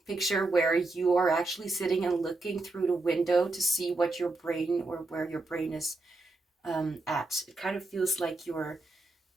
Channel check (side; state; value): left; quieter; 3.1 dB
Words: picture where you are actually sitting and looking through the window to see what your brain, or where your brain is at. It kind of feels like you're